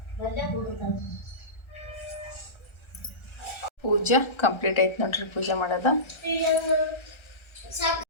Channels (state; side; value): late; right; 1.3 ms